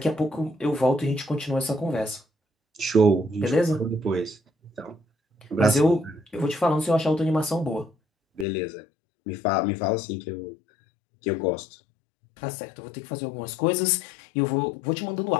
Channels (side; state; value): right; drops out; at 8.5 s